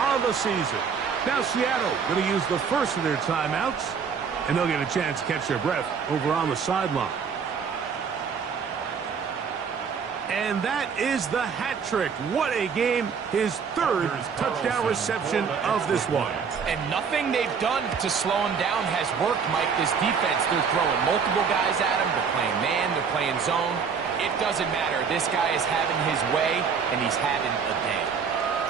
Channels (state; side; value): quieter; left; 6.2 dB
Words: the season. Now Seattle going to use the first of their timeouts, and they'll get a chance to catch their breath over on the sideline. And that is the hat trick. What a game. His 3rd touchdown reception of this one. And nothing they've done to slow him down has worked, Mike. This defense, they're throwing multiple guys at him. They're playing man, they're playing zone. It doesn't matter. This guy is having his way, and he's having a day.